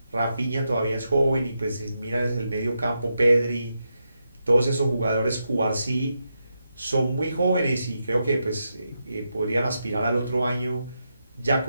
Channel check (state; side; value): inverted; both; correlation -0.85